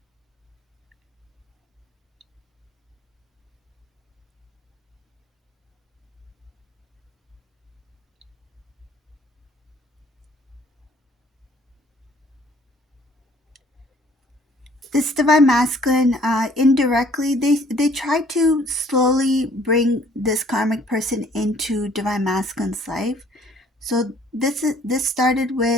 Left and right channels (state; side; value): normal; both; correlation 0.58